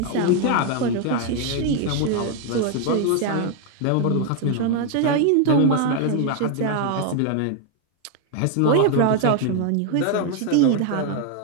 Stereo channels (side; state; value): both; different; correlation 0.00